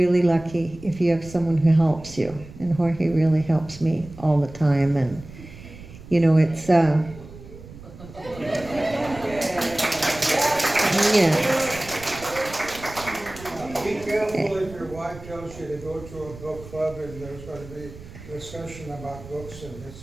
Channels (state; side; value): noise; right; rumble, 16 dB below the sound